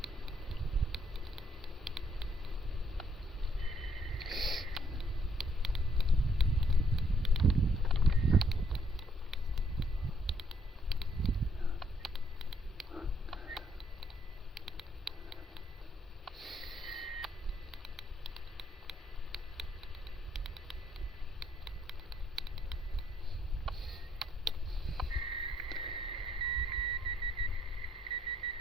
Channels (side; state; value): both; normal; correlation 0.69